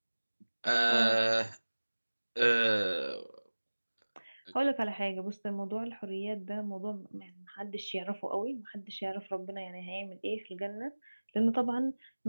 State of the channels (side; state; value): both; inverted; correlation -1.00